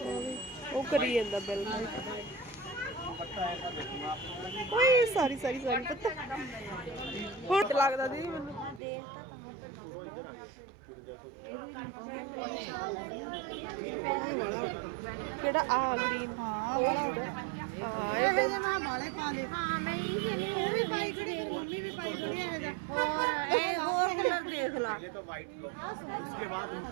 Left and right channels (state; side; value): drops out; left; at 8.8 s